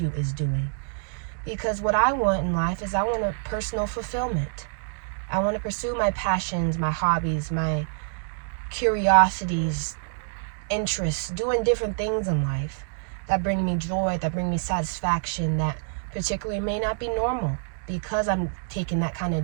is doing. Because what I want in life is I want a personal fulfillment. I want to pursue my passions, my hobbies, my curiosities, interests, doing different things in life that bring me joy, that bring me satisfaction, that particularly may not be normal, because I'm taking that kind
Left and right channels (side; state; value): left; silent; digital silence